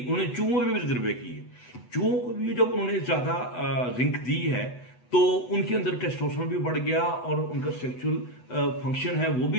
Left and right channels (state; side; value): late; right; 8.1 ms